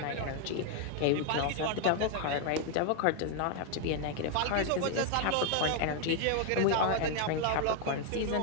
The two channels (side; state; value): both; different; correlation 0.00